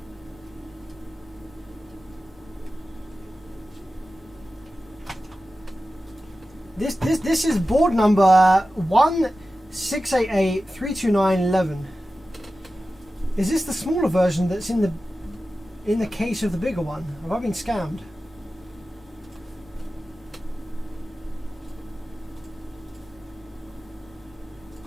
This is board number 168832911. Is this the smaller version that's in the case of the bigger one? Have I been scammed?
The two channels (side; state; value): both; normal; correlation 0.94